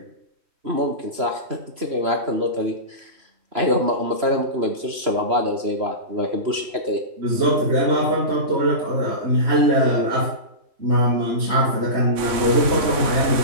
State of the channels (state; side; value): late; left; 3.1 ms